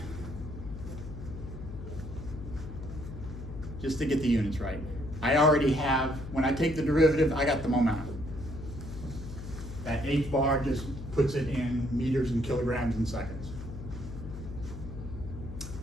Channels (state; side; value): noise; left; hum, 10 dB below the sound